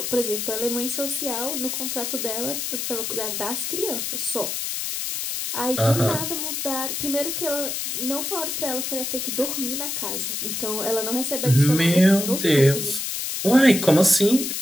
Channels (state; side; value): noise; left; hiss, 3 dB below the sound